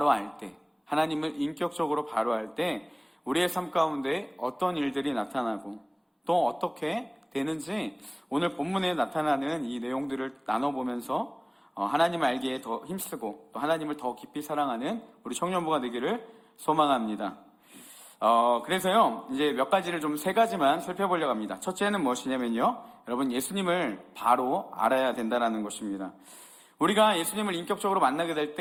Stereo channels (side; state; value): both; identical; correlation 1.00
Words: 알 때, 하나님을 인격적으로 바로 알 때 우리의 삶 가운데 어떤 일들이 나타나고 또 어떻게 되는지 오늘 본문에 나타나는 이 내용들을 나눠보면서 하나님을 알기에 더 힘쓰고 또 하나님을 더 깊이 사랑하는 우리 청년부가 되기를 소망합니다. 그래서요, 이제 몇 가지를 좀 3가지만 살펴보려고 합니다. 첫째는 무엇이냐면요, 여러분, 예수님을 바로 알아야 된다는 것입니다. 우리가 예수님을 인격적으로 만나게 될